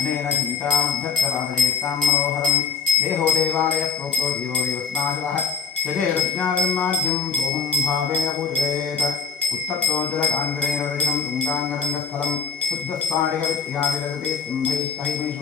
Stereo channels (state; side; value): quieter; right; 6.1 dB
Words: चिन्तामभ्यर्थवादयेत्तां मनोहरं देहो देवालयः प्रोक्तो जीवो देवस्नाशः यजेरज्ञानमाद्यं सोऽहं भावेन पूजयेत् उत्तप्तो जलकाङ्गरेण रजनं तुङ्गाङ्गरङ्गस्थलं शुद्धस्फाटिकविद्या विरजते